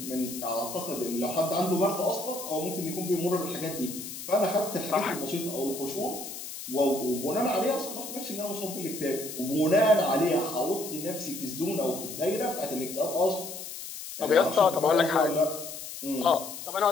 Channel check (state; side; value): noise; left; hiss, 10 dB below the sound